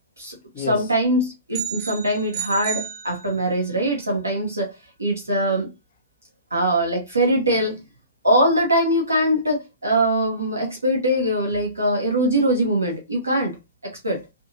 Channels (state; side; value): inverted; both; correlation -0.46